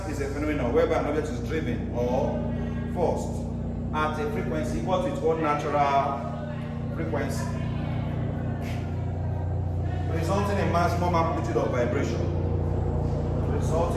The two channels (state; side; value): identical; both; correlation 1.00